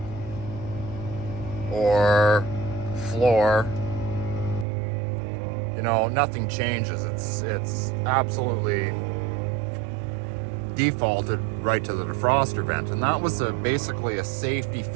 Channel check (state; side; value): drops out; left; at 4.7 s